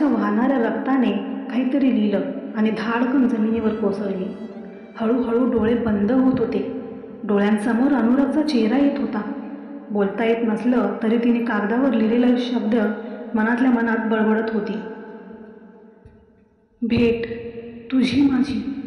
वाहणाऱ्या रक्ताने काहीतरी लिहिलं आणि धाडकन जमिनीवर कोसळली. हळूहळू डोळे बंद होत होते. डोळ्यांसमोर अनुरागचा चेहरा येत होता. बोलता येत नसलं तरी तिने कागदावर लिहिलेले शब्द मनातल्या मनात बडबडत होती. भेट तुझी माझी,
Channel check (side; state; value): both; identical; correlation 1.00